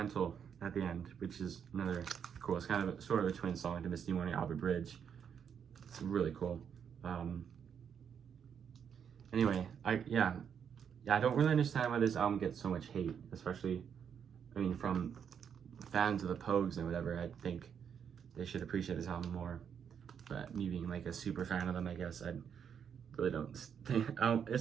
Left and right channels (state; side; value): quieter; left; 7.7 dB